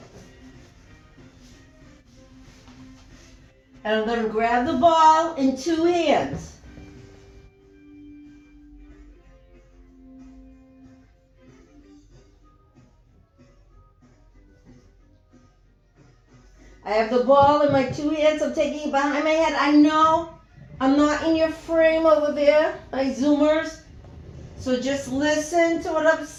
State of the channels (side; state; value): both; identical; correlation 1.00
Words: And I'm going to grab the ball in two hands. I have the ball in my two hands. I'm taking it behind my head. I know I'm not in your frame over there, my Zoomers. So just listen to what I'm